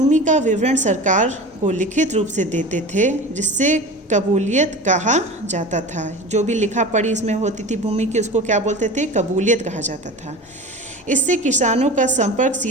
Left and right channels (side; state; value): both; normal; correlation 0.34